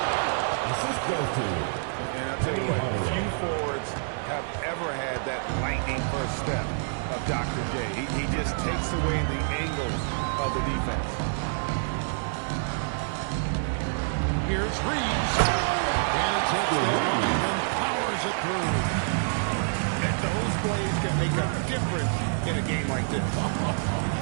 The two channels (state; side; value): silent; left; digital silence